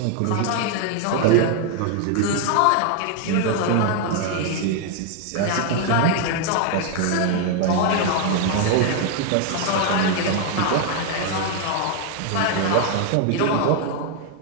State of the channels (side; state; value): both; different; correlation 0.00